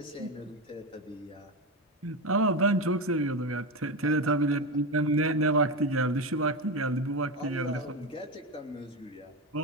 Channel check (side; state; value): both; normal; correlation 0.15